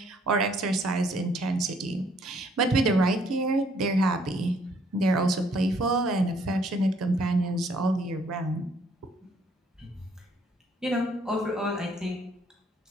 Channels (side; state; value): both; normal; correlation 0.65